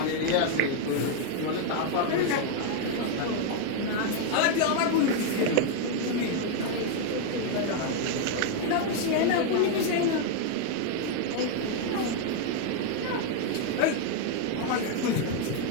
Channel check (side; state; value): both; different; correlation 0.00